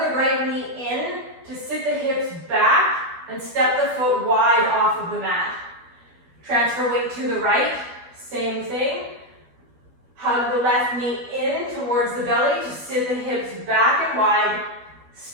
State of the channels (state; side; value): late; left; 12 ms